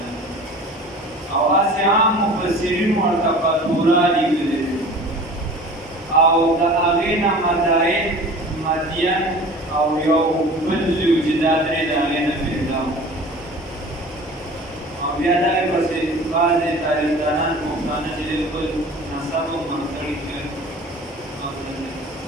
او هسې عام مفسرین ورته فاتوره لیکلې او د هغې نه مدائن مدین او یو بل زوی چې دا درې د هغې نه پیدا و. او بیا دغې پسې بعضې تاریخدانان پښتانه چې دی خپل نسب هم منقړي کړي.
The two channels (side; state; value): both; normal; correlation 0.41